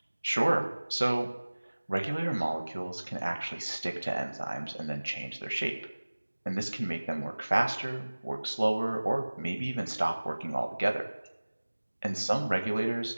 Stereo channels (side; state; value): both; inverted; correlation -1.00